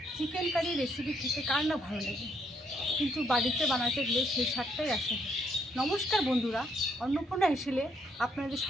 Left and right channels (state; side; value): normal; both; correlation 0.72